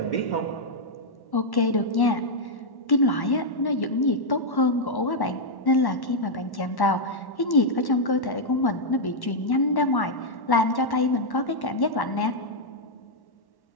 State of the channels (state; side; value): late; right; 1.1 ms